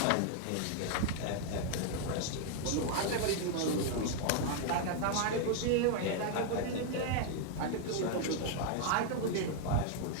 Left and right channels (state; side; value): different; both; correlation 0.00